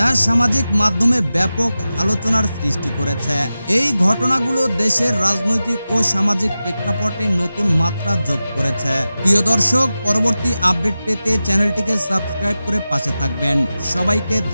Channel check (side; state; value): both; inverted; correlation -0.94